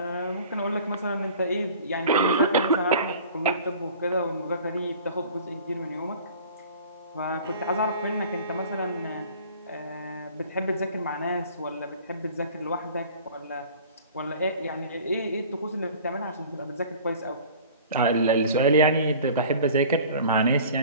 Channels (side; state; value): both; inverted; correlation -0.45